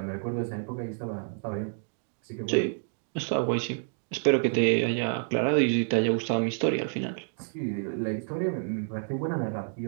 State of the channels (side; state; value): left; silent; digital silence